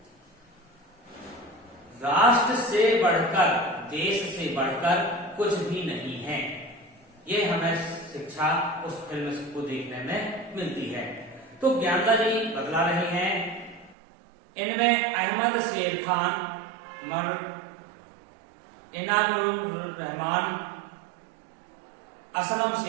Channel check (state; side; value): drops out; left; at 14.0 s